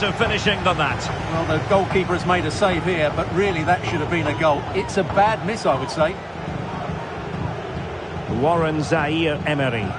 finishing than that. Well, the goalkeeper has made a save here, but really that should have been a goal. It's a bad miss, I would say. Warren Zaire-Emery.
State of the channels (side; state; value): both; identical; correlation 1.00